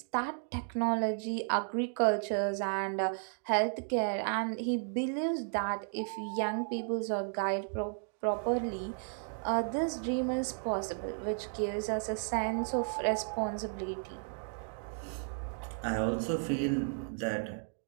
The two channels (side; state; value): left; silent; 55 dB below the other